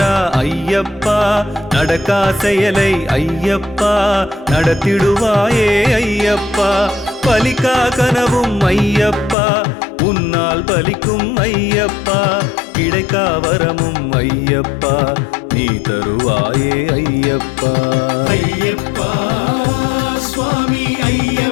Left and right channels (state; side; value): drops out; right; at 9.3 s